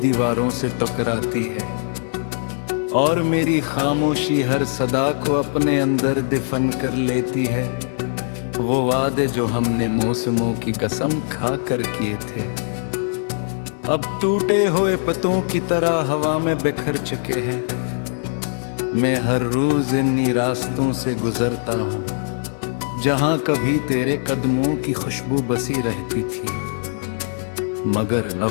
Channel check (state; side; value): silent; right; digital silence